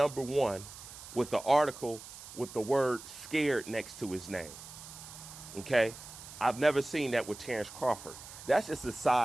with the article with the word scared next to his name. Okay? I've never seen that with Terrence Crawford. That's just a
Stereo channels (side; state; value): right; noise; hiss, 15 dB below the sound